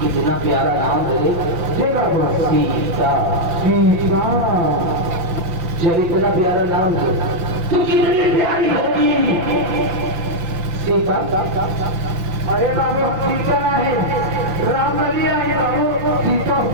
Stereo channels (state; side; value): late; left; 5.9 ms